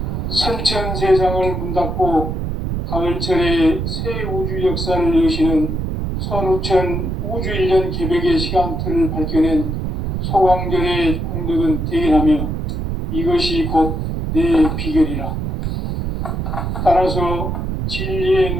선천 세상을 문 닫고 가을철에 새 우주 역사를 여시는 선우천 우주일년 개백의 시간틀을 밝혀낸 소강절의 공덕은 대견하며 이것이 곧 내 비결이라. 따라서 진리의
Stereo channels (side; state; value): right; noise; rumble, 2 dB below the sound